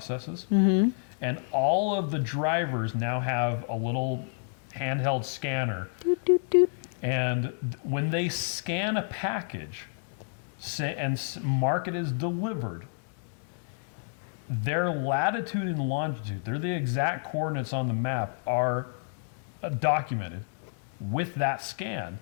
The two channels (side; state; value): right; silent; digital silence